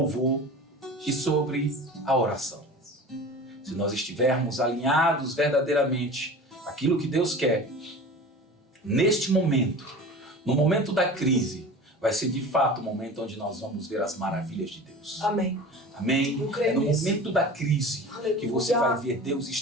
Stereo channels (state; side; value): normal; both; correlation 0.37